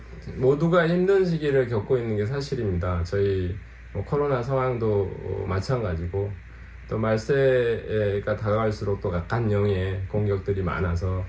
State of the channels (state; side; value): identical; both; correlation 1.00